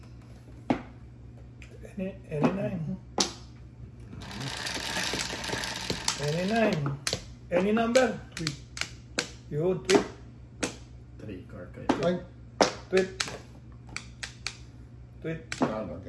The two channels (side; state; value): both; identical; correlation 1.00